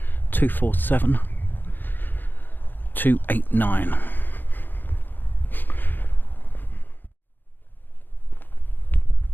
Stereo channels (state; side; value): late; right; 0.092 ms